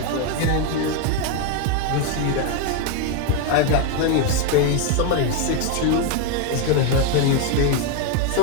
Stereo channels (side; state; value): both; different; correlation 0.02